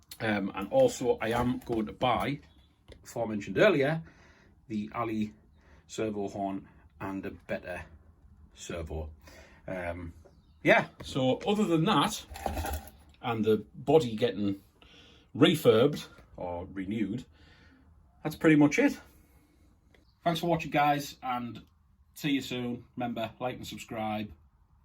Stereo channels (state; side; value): identical; both; correlation 1.00